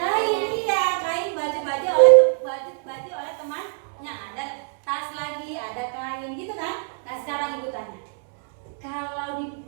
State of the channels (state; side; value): silent; left; 63 dB below the other